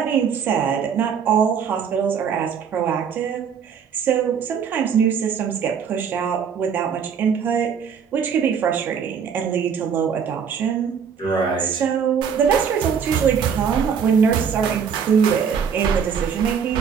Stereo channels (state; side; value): quieter; left; 7.0 dB